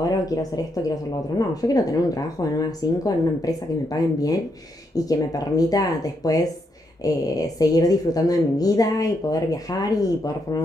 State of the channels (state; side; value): normal; both; correlation 0.79